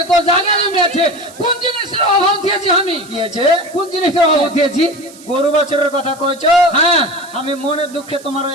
তোর জায়গা জমি আছে, কোন জিনিসের অভাব দিয়েছি আমি? কি আছে? কোন জিনিসের অভাব দিয়েছি? গরু বছরের কথা কইছো? হ্যাঁ আমি মনের দুঃখে তোমার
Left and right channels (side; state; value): right; noise; hiss, 21 dB below the sound